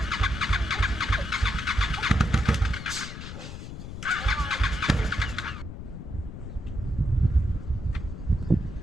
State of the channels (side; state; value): left; noise; rumble, 9 dB below the sound